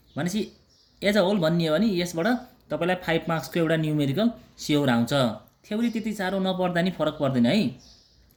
भनेपछि एज अ होल भन्ने हो भने यसबाट तपाईँलाई 5 मार्क्सको एउटा न्युमेरिकल स्योर आउँछ। थ्योरी त्यति साह्रो नपढ्दा नि फरक पर्दैन है।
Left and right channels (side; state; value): both; identical; correlation 1.00